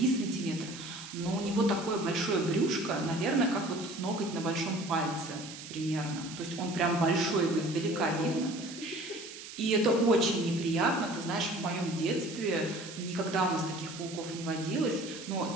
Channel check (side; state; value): right; noise; hiss, 13 dB below the sound